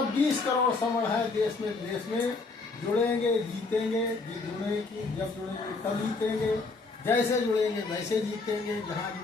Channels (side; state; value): right; quieter; 3.8 dB